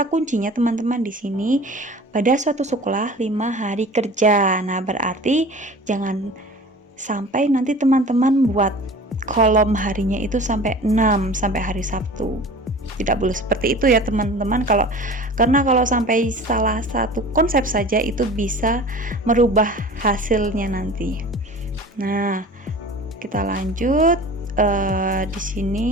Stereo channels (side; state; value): both; normal; correlation 0.41